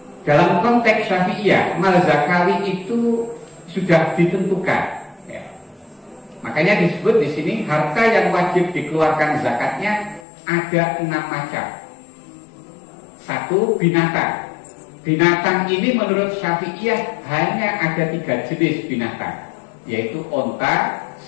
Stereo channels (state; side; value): drops out; right; at 10.2 s